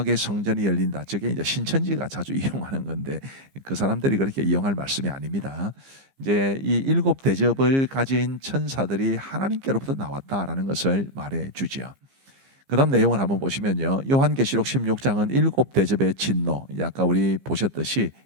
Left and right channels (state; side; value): late; left; 15 ms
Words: 성전이 열린다. 저게 이제 신천지가 자주 이용하는 건데 그 사람들이 그렇게 이용할 말씀이 아닙니다. 이제 이 7 대접을 가진 천사들이 하나님께로부터 나왔다라는 것을 말해 주지요. 그 다음 내용을 한번 보시면요. 요한계시록 16장은 7 대접의 진노, 아까 우리 보셨듯이